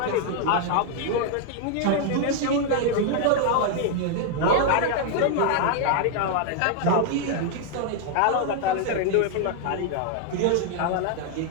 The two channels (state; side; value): different; both; correlation 0.00